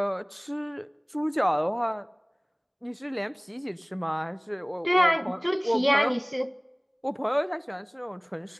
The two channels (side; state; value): both; identical; correlation 1.00